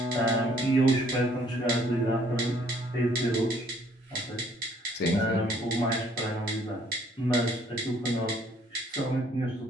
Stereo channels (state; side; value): normal; both; correlation 0.62